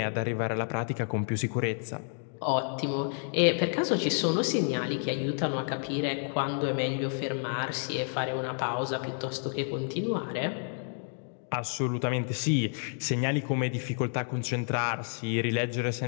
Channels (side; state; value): right; silent; 58 dB below the other